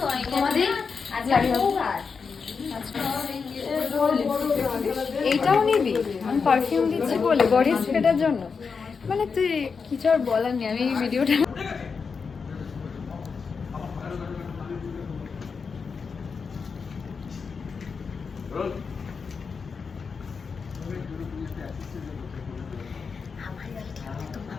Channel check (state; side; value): quieter; right; 5.4 dB